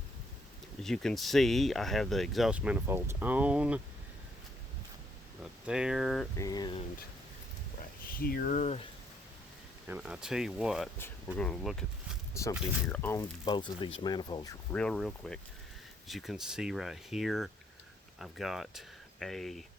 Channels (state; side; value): normal; both; correlation 0.70